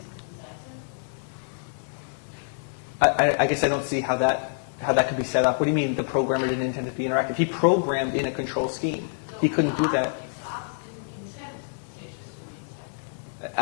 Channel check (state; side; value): silent; right; digital silence